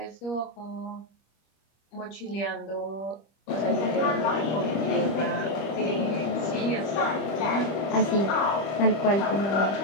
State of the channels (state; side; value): late; right; 25 ms